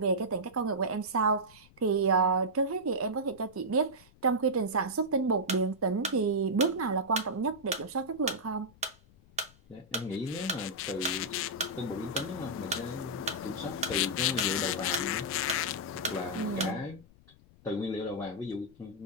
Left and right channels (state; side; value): noise; left; rumble, 26 dB below the sound